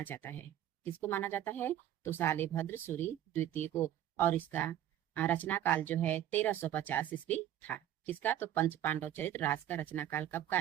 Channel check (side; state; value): left; quieter; 11.7 dB